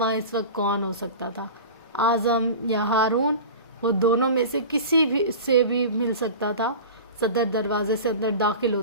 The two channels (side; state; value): both; inverted; correlation -0.34